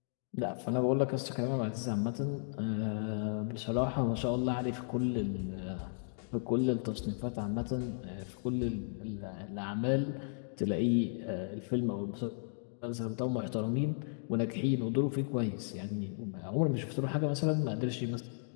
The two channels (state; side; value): silent; right; digital silence